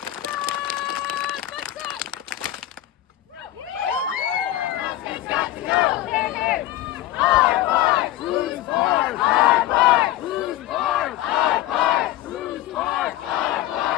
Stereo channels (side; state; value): right; quieter; 14.3 dB